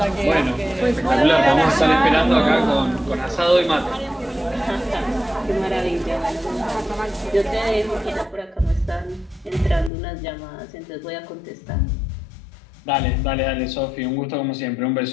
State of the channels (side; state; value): right; drops out; at 9.9 s